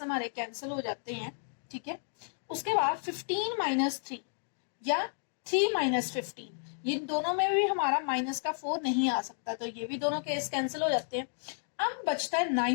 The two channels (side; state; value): right; silent; digital silence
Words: हमारे कैंसिल हो जाते हैं, ठीक है। उसके बाद 15 माइनस 3 या 3 माइनस 15, ये दोनों में भी हमारा माइनस का 4 नहीं आ सकता, तो ये भी दोनों केस कैंसिल हो जाते हैं। अब बचता है